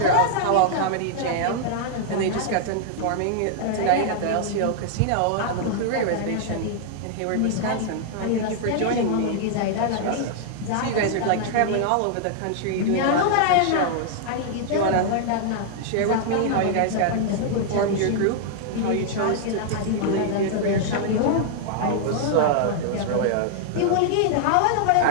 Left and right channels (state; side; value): different; both; correlation -0.01